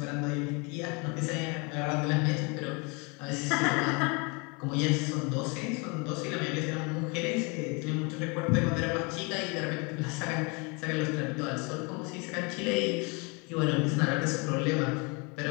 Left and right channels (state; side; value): quieter; right; 30.6 dB